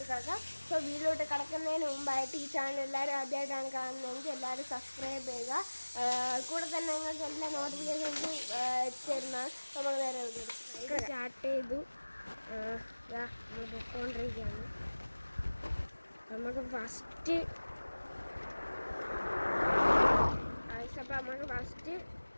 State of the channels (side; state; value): both; inverted; correlation -1.00